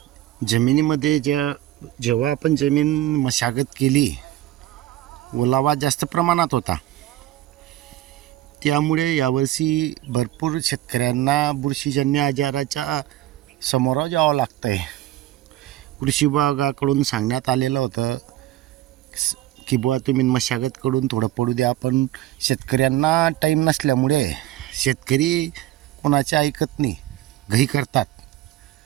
जमिनीमध्ये जेव्हा आपण जमीन मशागत केली, ओलावा जास्त प्रमाणात होता. त्यामुळे यावर्षी भरपूर शेतकऱ्यांना बुरशीजन्य आजाराच्या समोर जावं लागतं आहे. कृषी विभागाकडून सांगण्यात आलेलं होतं की बुवा तुम्ही मशागत करून थोडं पडू द्या, पण शेतकऱ्यांना टाईम नसल्यामुळे शेतकरी कोणाचे ऐकत नाही, घाई करतात.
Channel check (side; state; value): left; quieter; 14.7 dB